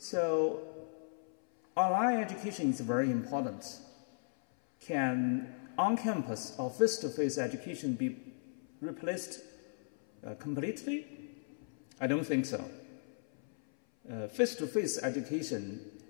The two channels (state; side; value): silent; right; 53 dB below the other